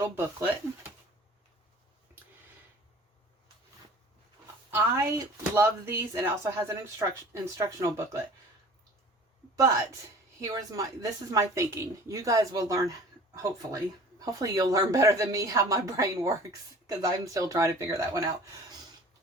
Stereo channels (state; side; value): normal; both; correlation 0.45